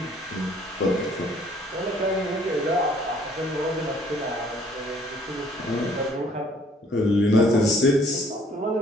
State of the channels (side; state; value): both; normal; correlation 0.60